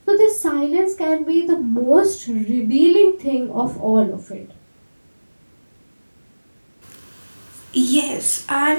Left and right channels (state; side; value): inverted; both; correlation -1.00